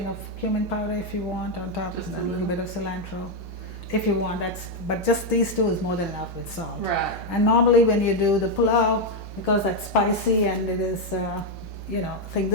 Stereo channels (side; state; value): both; normal; correlation 0.03